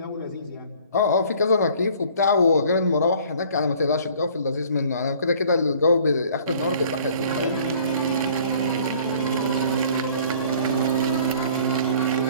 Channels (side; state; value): both; inverted; correlation -0.53